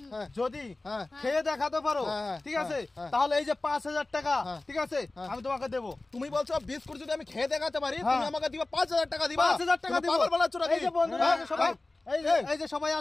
হ্যাঁ যদি হ্যাঁ খেয়ে দেখাতে পারো ঠিক আছে তাহলে এই যে 5000 টাকা ঠিক আছে আমি তোমাকে দেবো। তুমি বলছো বিস্কুট যদি আমি খেয়ে দেখাতে পারি তুমি আমাকে দিবা 5000 টাকা দিবা। 5000 টাকা দিব। পাগল বলাচ্ছ নাকি? এই যে বন্ধুরা সবাই, এই যে সবাই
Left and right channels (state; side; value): quieter; right; 3.0 dB